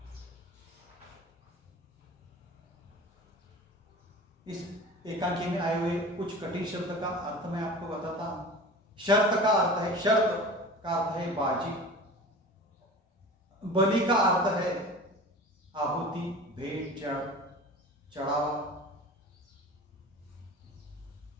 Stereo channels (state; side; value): normal; both; correlation 0.38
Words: इस एकांकी में आए हुए कुछ कठिन शब्द का अर्थ मैं आपको बताता हूं। शर्त का अर्थ है, शर्त का अर्थ है बाजी। बलि का अर्थ है आहुति, भेंट, चढ़ावा।